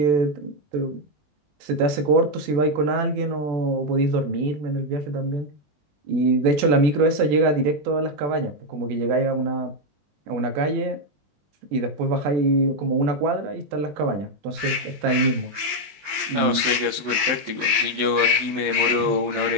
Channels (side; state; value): left; late; 20 ms